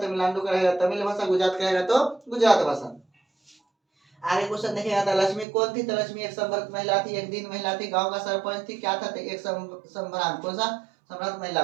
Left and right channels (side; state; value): left; drops out; at 5.5 s